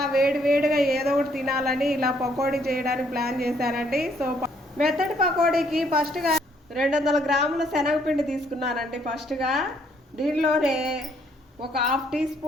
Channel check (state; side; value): normal; both; correlation 0.67